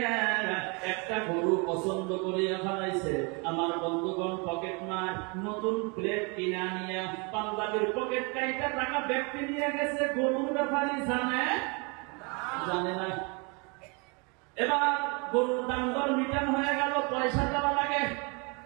একটা গরু পছন্দ করিয়া ফেলাইছে। আমার বন্ধুগণ পকেট মার নতুন প্লেট কিনা নিয়া পাঞ্জাবির পকেট কাইটা টাকা ব্যক্তি নিয়ে গেছে। গরুর ব্যাপারে জানে জানে না। এবার গরুর দাম দর মিটান হয়ে গেল, পয়সা দেওয়া লাগে।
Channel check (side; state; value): left; quieter; 31.7 dB